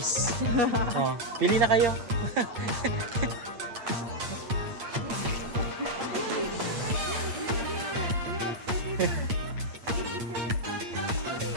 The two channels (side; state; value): left; late; 8.7 ms